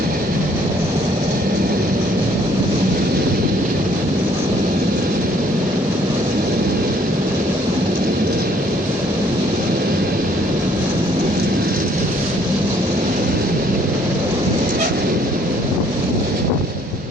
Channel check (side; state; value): both; normal; correlation 0.63